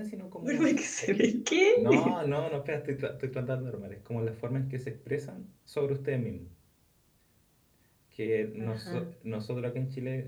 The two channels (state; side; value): identical; both; correlation 1.00